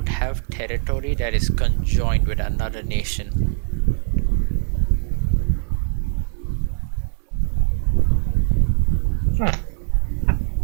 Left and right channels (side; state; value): left; silent; digital silence